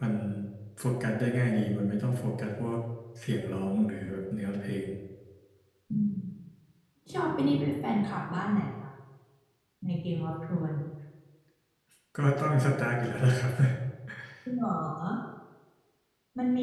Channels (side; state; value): both; identical; correlation 1.00